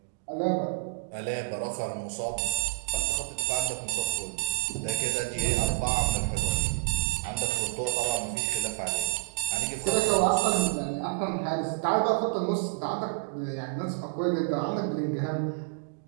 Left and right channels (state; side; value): silent; left; digital silence